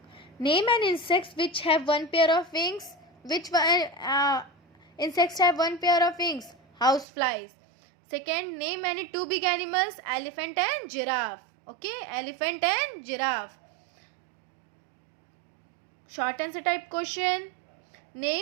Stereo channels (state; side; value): drops out; left; at 7.1 s